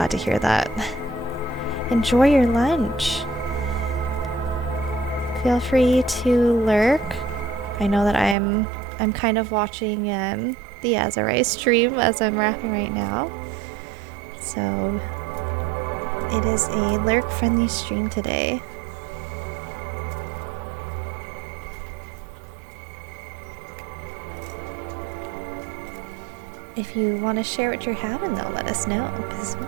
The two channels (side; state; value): left; drops out; at 8.3 s